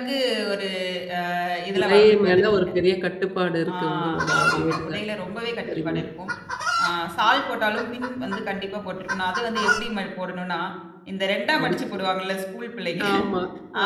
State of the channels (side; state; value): both; identical; correlation 1.00